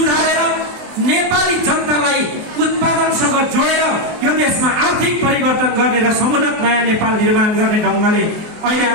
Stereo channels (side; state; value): left; late; 24 ms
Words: नेपाली जनतालाई उत्पादनसँग जोडेर यो देशमा आर्थिक परिवर्तन गर्ने र समुन्नत नयाँ नेपाल निर्माण गर्ने ढंगले अहिले